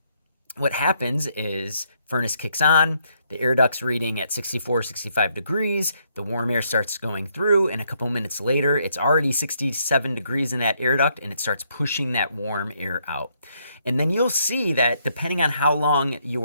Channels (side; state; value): both; inverted; correlation -0.73